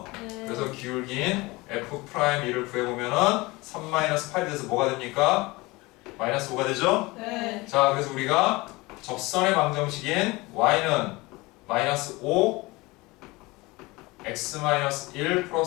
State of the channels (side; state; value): right; quieter; 22.7 dB